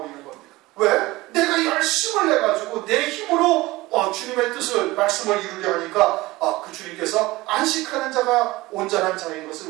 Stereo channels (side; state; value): left; quieter; 19.9 dB